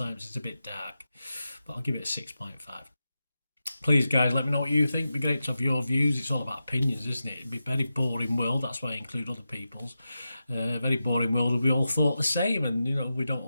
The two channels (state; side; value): inverted; both; correlation -0.91